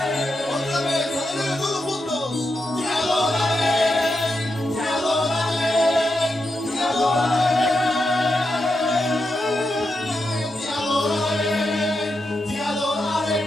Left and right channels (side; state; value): both; normal; correlation 0.86